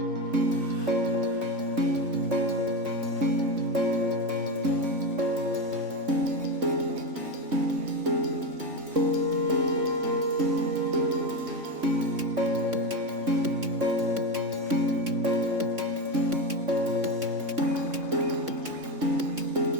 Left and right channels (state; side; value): late; left; 3.6 ms